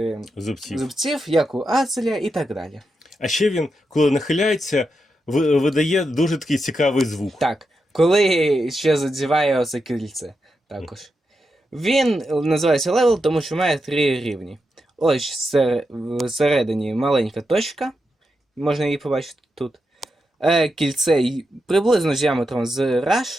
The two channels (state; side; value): normal; both; correlation 0.86